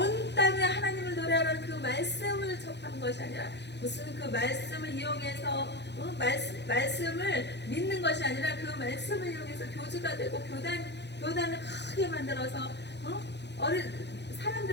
땅에 하나님을 노래하는 그 말씀을 접하는 것이 아니라 무슨 그 말씀을 이용해서 말씀을 믿는 것이 아니라 그 말씀을 이용해서 교주가 되고 교단을 크게 만들어서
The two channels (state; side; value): late; right; 0.50 ms